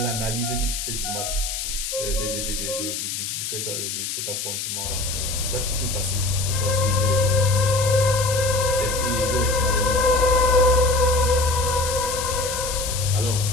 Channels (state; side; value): noise; left; hiss, 4 dB below the sound